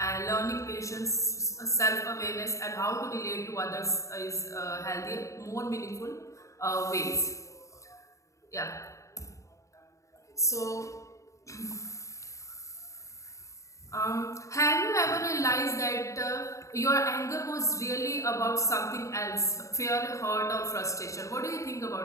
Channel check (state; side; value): late; right; 0.15 ms